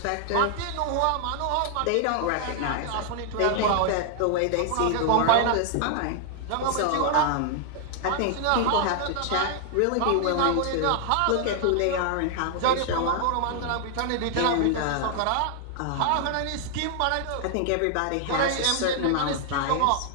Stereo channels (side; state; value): both; different; correlation 0.00